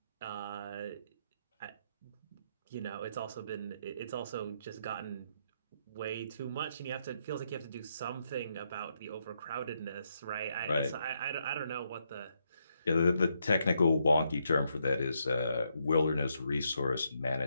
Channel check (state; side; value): inverted; both; correlation -0.78